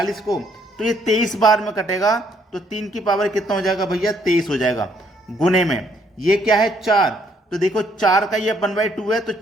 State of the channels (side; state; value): both; normal; correlation 0.68